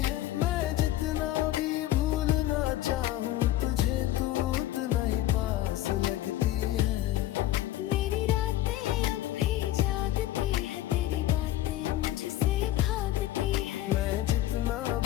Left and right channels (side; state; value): right; quieter; 14.2 dB